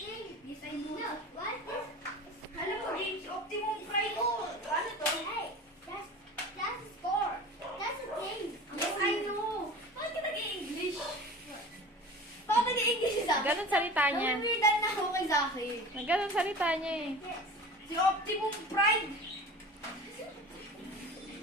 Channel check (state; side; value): normal; both; correlation 0.36